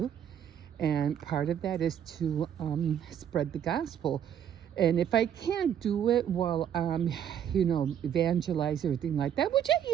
And part of that is to spread the gospel. And if I can't do it while evangelize, everything like that, which I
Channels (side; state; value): left; quieter; 9.3 dB